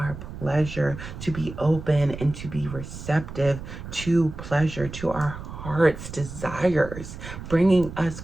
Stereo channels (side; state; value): right; noise; rumble, 11 dB below the sound